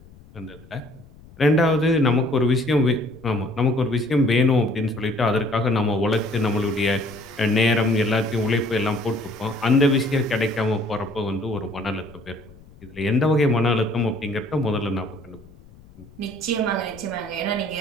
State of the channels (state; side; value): noise; left; rumble, 23 dB below the sound